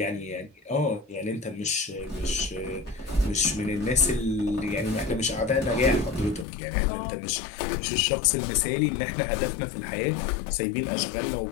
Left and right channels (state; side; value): drops out; right; at 6.5 s